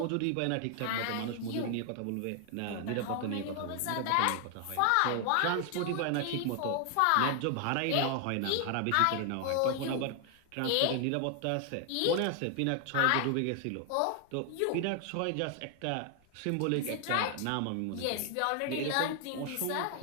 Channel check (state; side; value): different; both; correlation 0.00